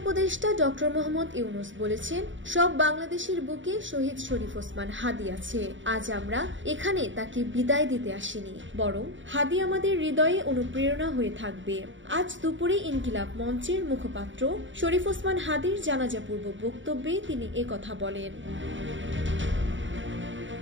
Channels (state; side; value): late; left; 0.55 ms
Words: উপদেষ্টা ডক্টর মোহাম্মদ ইউনূস বলেছেন, সব বাংলাদেশের বুকে শহীদ শরীফ ওসমান হাদি আছে। আজ আমরা এখানে তাকে বিদায় দিতে আসিনি, বরং হাদি আমাদের হৃদয়ে অনুপ্রেরণা হয়ে থাকবে। আজ দুপুরে ইনকিলাব মঞ্চের মুখপাত্র শরীফ ওসমান হাদির জানাজাপূর্ব বক্তব্যে তিনি একথা বলেন।